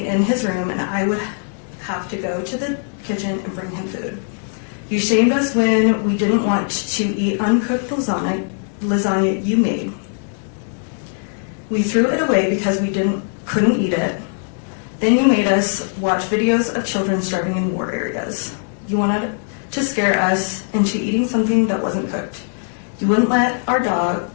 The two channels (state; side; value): silent; right; 58 dB below the other